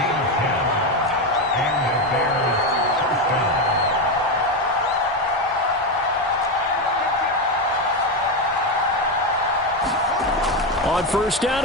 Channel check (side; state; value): both; normal; correlation 0.11